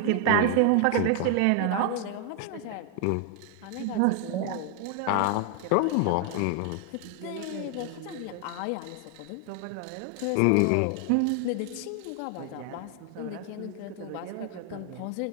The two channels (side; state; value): both; different; correlation 0.00